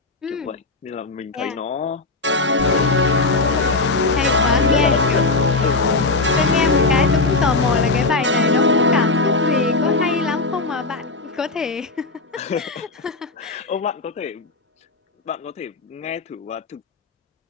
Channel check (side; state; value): right; quieter; 3.5 dB